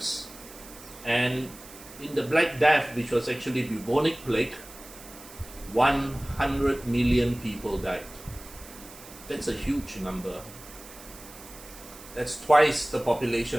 And in the Black Death, which was actually bubonic plague, 100 million people died. That's a huge number. That's twice the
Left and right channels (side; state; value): right; noise; hiss, 18 dB below the sound